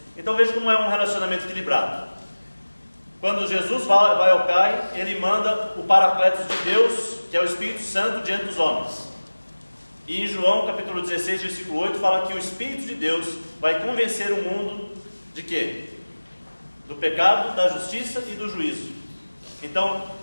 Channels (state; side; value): inverted; both; correlation -1.00